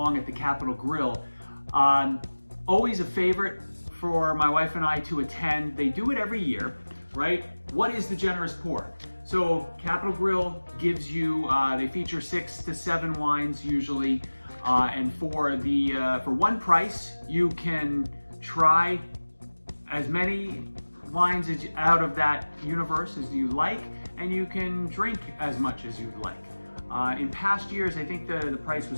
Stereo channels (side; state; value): both; inverted; correlation -1.00